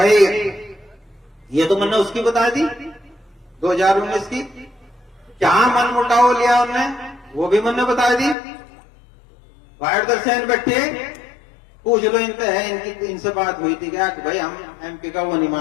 ये तो मैंने उसकी बता दी 2019 की, क्या मन मुटाव लिया उनने वो भी मैंने बता दी। वायर दर्शन बैठे पूछ लो इनसे है, इनसे बात हुई थी क्या कि भाई हम एमपी का वो नहीं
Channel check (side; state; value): right; drops out; at 8.3 s